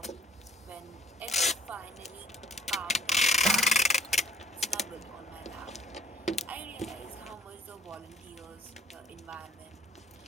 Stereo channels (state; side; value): normal; both; correlation 0.56